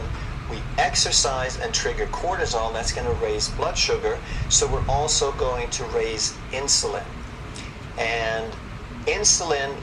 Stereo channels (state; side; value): identical; both; correlation 1.00